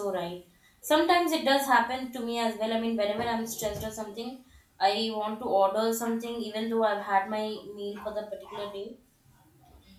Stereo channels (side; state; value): both; identical; correlation 1.00